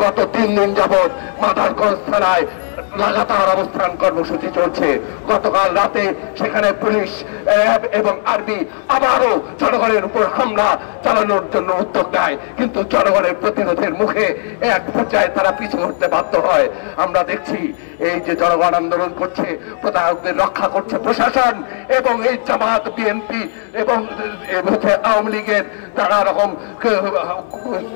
গত 3 দিন যাবৎ মাদারগঞ্জ থানায় লাগাতার অবস্থান কর্মসূচি চলছে। গতকাল রাতে সেখানে পুলিশ, র্যাব এবং আর্মি আবারও জনগণের উপর হামলা চালানোর জন্য উদ্যোগ নেয়, কিন্তু জনগণের প্রতিরোধের মুখে এক পর্যায়ে তারা পিছু হটতে বাধ্য হয়। আমরা দেখছি এই যে জনগণ আন্দোলন করছে, প্রতারকদের রক্ষা করছে প্রশাসন এবং এই জামাত, বিএনপি এবং আওয়ামী লীগের নানা রকম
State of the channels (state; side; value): silent; right; 63 dB below the other